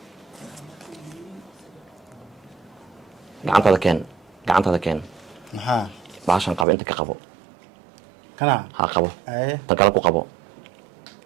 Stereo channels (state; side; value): drops out; left; at 6.7 s